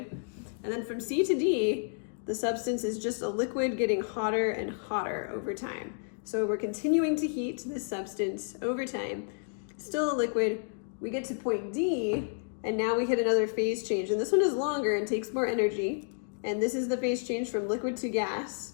And then from C to D, the substance is just a liquid getting hotter and hotter over time. So we're continuing to heat this substance over time, still a liquid. We get to point D, and now we hit another phase change. And this one is longer and takes more energy. And this is the phase change from liquid to gas.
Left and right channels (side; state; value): right; silent; digital silence